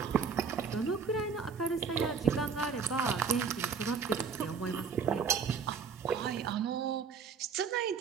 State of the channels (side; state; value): left; quieter; 5.9 dB